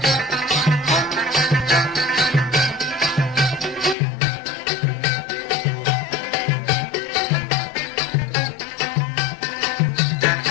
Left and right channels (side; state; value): right; drops out; at 4.0 s